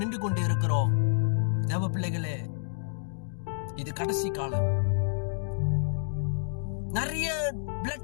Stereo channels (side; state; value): right; silent; digital silence